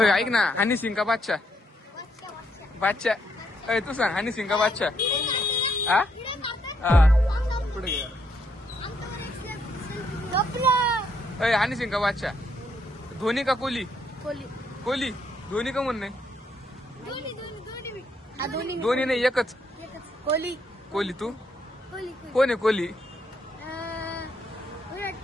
ऐक ना, हनी सिंग का बादशाह? बादशाह. तू सांग, हनी सिंग का बादशाह? हा पुढे घे. हनी सिंग का बादशाह? धोनी का कोहली? कोहली. धोनी का म्हणणं नाही? दोन्ही नाही, एकच. कोहली. कोहली. तू कोहली. कोण आहे कोहली? विराट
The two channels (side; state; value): both; normal; correlation 0.74